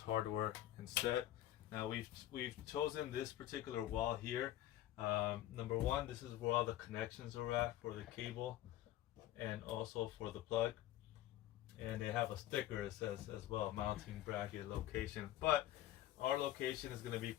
instead. Now we've chosen this particular wall here. Number one, this is where all the connections are at for the cable and also for the plug, and they have a sticker that says as well mounting bracket location, but our location is going to be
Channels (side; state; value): right; quieter; 13.8 dB